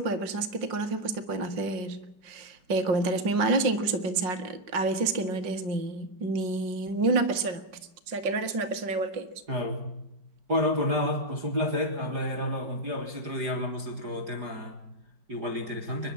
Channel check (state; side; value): late; left; 5.5 ms